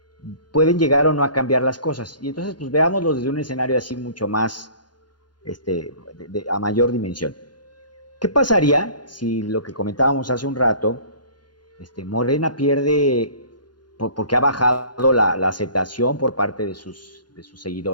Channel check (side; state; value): right; late; 0.71 ms